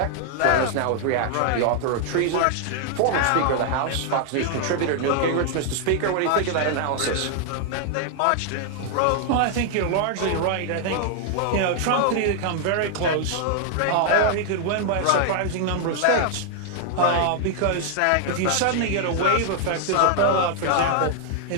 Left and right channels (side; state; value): both; different; correlation 0.00